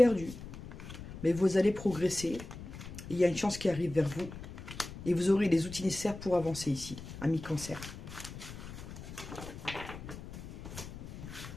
mais vous allez progresser. Il y a une chance qui arrive vers vous et vous aurez les outils nécessaires pour avancer ici, à mi-cancer.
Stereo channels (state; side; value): noise; left; rumble, 12 dB below the sound